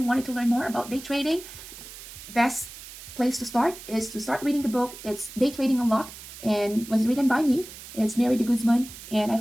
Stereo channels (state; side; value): noise; right; hiss, 14 dB below the sound